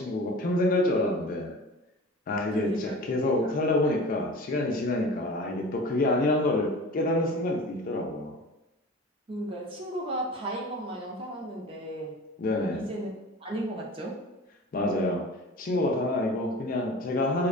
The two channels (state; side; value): normal; both; correlation 0.38